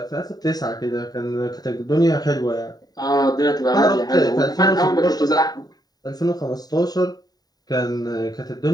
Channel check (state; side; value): late; right; 0.19 ms